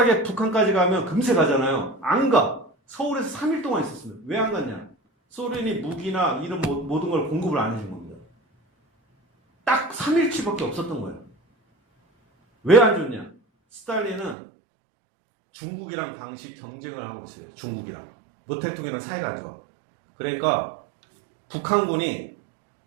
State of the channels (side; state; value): left; drops out; at 14.4 s